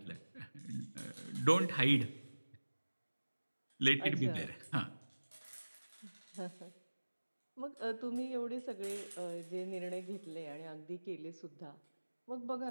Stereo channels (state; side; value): inverted; both; correlation -1.00